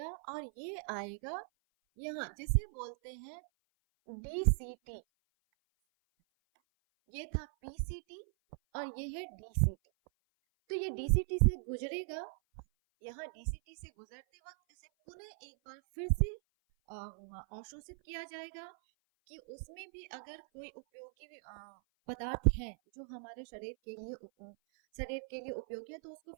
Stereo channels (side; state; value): left; silent; 52 dB below the other